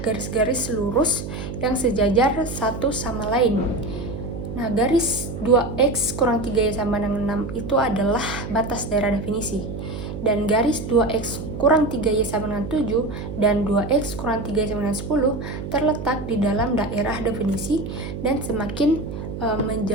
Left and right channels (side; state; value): right; noise; hum, 7 dB below the sound